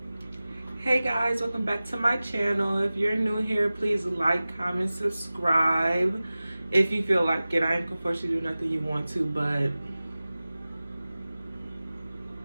Hey guys, welcome back to my channel. If you're new here, please like, comment, subscribe. If you feel like it, I ain't gonna force you to do nothing you want to, but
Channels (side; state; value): both; inverted; correlation -0.97